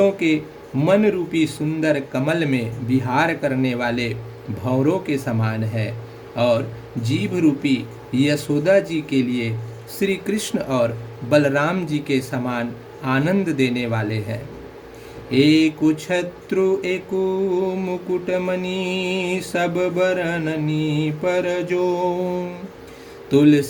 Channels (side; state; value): both; identical; correlation 1.00